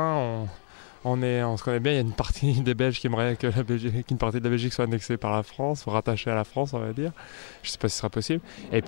on se connaît bien. Il y a une partie des Belges qui aimerait qu'une partie de la Belgique soit annexée par la France, rattachée à la France, on va dire. Je ne sais pas si ce sera possible. Et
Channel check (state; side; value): silent; right; digital silence